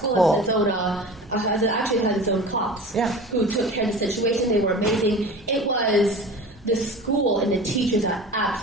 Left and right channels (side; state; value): both; normal; correlation 0.36